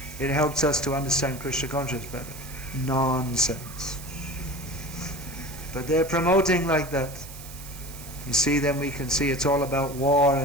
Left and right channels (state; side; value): noise; right; hiss, 15 dB below the sound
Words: it helps us to understand Krishna consciousness better. Nonsense. But they're promoting like that. You see, then we can see it's all about war